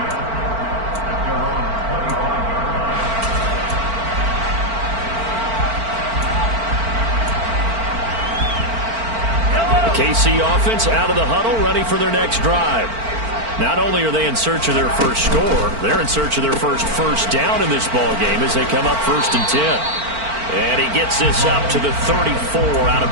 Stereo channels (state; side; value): late; left; 4.4 ms